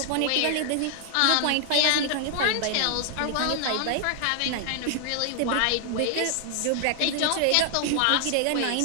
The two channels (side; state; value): both; different; correlation 0.00